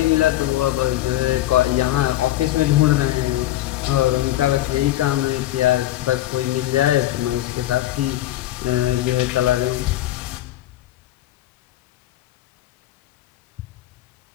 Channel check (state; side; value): quieter; right; 14.7 dB